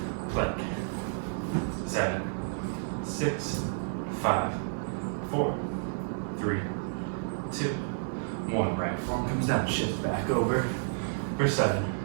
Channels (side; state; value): left; silent; 57 dB below the other